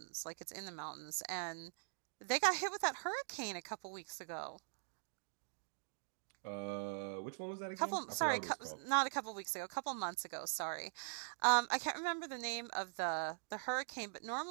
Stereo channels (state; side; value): silent; left; digital silence